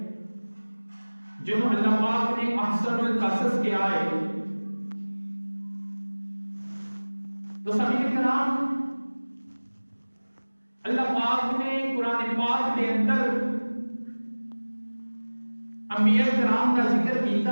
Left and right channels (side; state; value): both; inverted; correlation -1.00